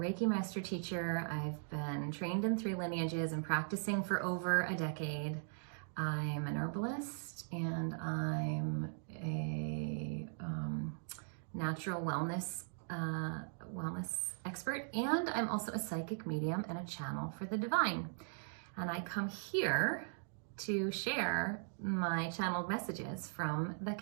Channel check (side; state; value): left; silent; digital silence